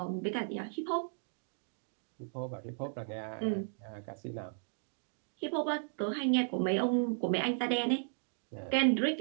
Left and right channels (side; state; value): left; silent; digital silence